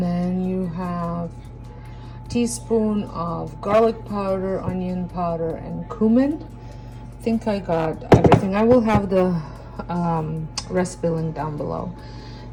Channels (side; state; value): both; identical; correlation 1.00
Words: then you have teaspoon of garlic powder, onion powder, and cumin. I think I got everything. I will have the recipe link down below.